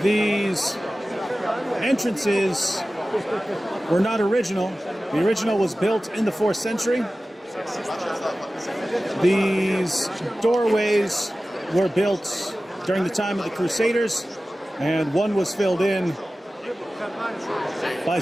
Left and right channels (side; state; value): both; normal; correlation 0.96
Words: These entrances were not original. The original was built in the 4th century. These doorways were built during the time of the Crusaders, and one was filled in by